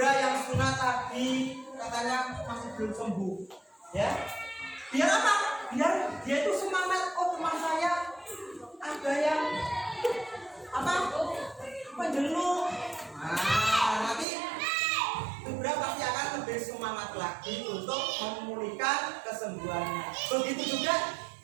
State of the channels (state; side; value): drops out; left; at 14.2 s